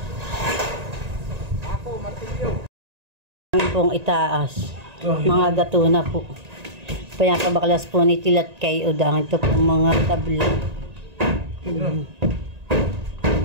Ako, martilyo. Ang pong itaas. Mga gato na po. Pinapabaklas po ni tilat kay Udang. Ito po mga tabla.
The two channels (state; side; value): late; left; 1.9 ms